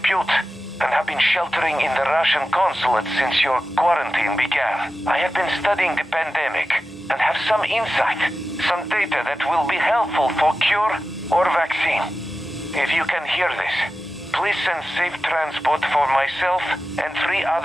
and have been sheltering in the Russian consulate since your quarantine began. I have been studying the pandemic and have some insight, some data that will be helpful for cure or vaccine. If you can hear this, please send safe transport for myself and 3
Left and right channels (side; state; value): both; normal; correlation 0.93